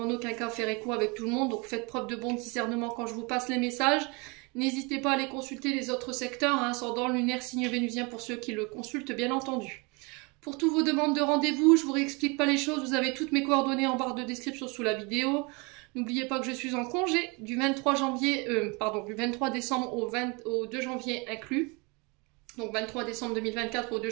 en aucun cas faire écho avec tout le monde. Donc faites preuve de bon discernement quand je vous passe les messages. N'hésitez pas à aller consulter les autres secteurs, ascendant, lunaire, signe vénusien pour ceux qui le consultent bien entendu. Pour toutes vos demandes de rendez-vous, je vous réexplique pas les choses, vous avez toutes mes coordonnées en barre de description sous la vidéo. N'oubliez pas que je suis en congé du 23 décembre au 2 janvier inclus. Donc 23 décembre 2024 au 2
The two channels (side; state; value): left; quieter; 29.2 dB